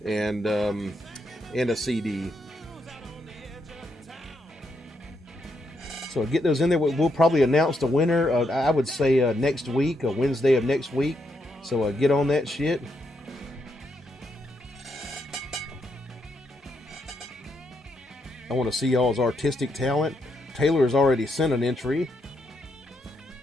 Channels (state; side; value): normal; both; correlation 0.79